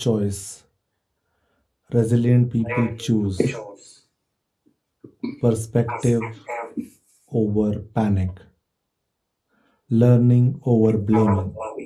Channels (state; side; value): identical; both; correlation 1.00